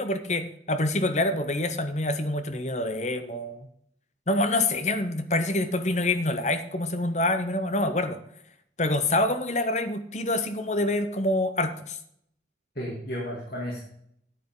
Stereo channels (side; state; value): both; normal; correlation 0.27